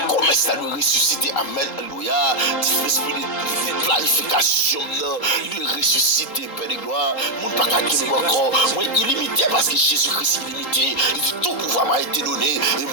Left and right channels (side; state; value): right; late; 3.8 ms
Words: Comment ça nous ressusciter? Amen. Alléluia. L'esprit de planification de ressusciter, Père de gloire. Nous pas capables encore. Moi, illimité parce que Jésus-Christ est illimité. Il dit tout pouvoir m'a été donné. Et